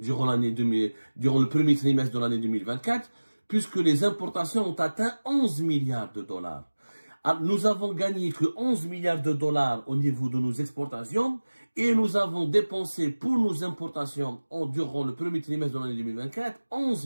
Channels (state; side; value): inverted; both; correlation -1.00